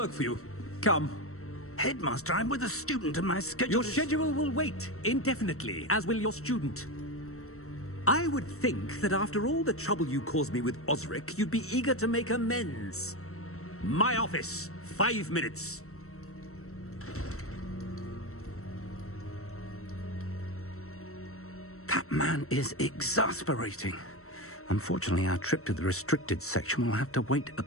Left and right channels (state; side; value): late; right; 0.63 ms